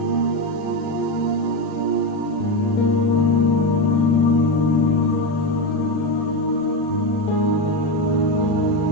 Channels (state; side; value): late; right; 40 ms